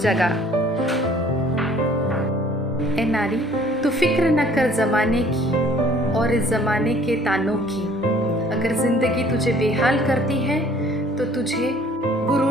ए नारी, तू फिक्र न कर ज़माने की और इस ज़माने के तानों की। अगर ज़िंदगी तुझे बेहाल करती है तो तुझे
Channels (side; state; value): both; normal; correlation 0.55